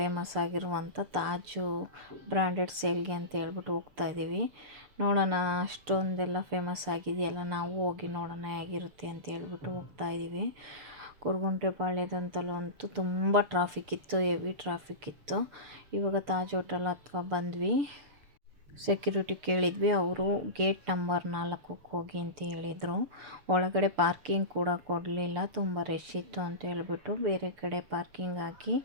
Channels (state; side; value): late; left; 6.8 ms